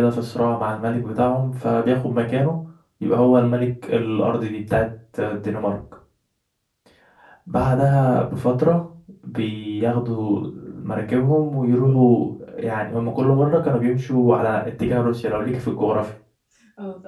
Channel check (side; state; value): both; identical; correlation 1.00